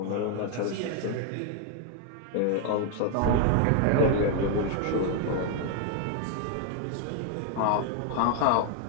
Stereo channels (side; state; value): both; different; correlation 0.00